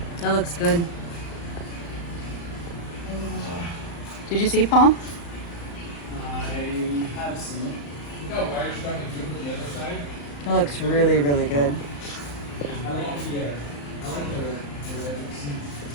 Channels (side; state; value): right; late; 35 ms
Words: That looks good. Did you see, Paul? I have seen it. It looks really, really good.